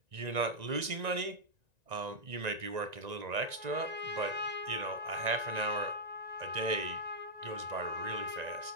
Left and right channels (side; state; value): left; late; 1.9 ms